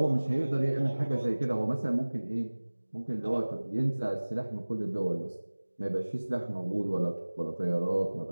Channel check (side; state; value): both; inverted; correlation -1.00